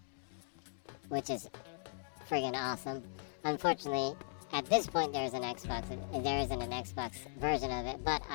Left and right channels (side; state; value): right; silent; digital silence